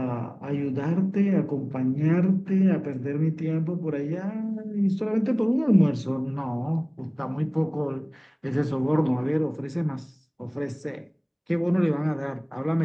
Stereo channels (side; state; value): both; identical; correlation 1.00